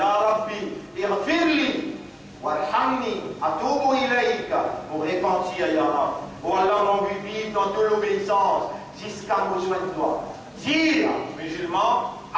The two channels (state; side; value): identical; both; correlation 1.00